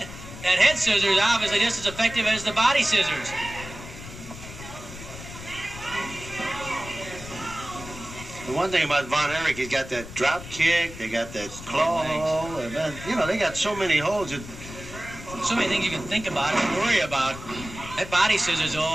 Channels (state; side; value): noise; left; rumble, 13 dB below the sound